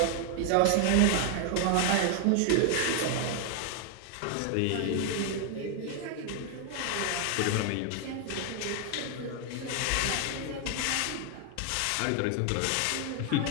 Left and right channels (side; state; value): both; different; correlation 0.00